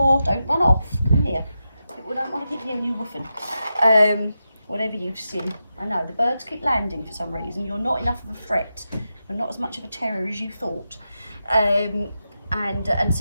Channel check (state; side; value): inverted; both; correlation -0.89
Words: Don't run off. Come here. People don't want to keep hearing you woofing. whatever you've seen. I know, the birds keep landing for some reason. You're not enough of a threat. You're not as much of a terror as you thought. And